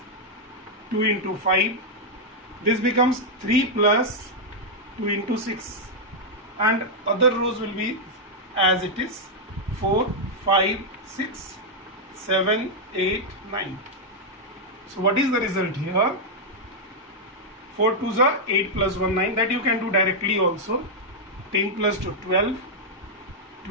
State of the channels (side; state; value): both; normal; correlation -0.03